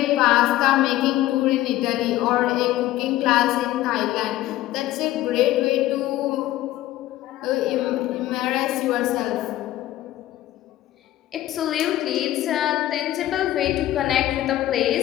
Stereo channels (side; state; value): right; quieter; 14.9 dB